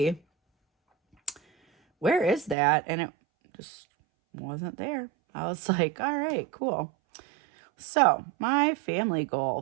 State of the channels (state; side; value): drops out; left; at 2.6 s